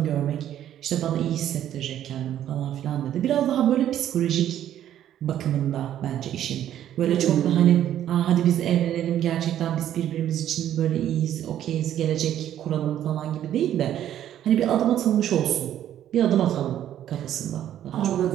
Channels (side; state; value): left; quieter; 11.3 dB